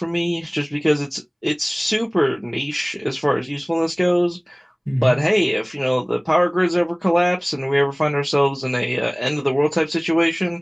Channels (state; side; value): identical; both; correlation 1.00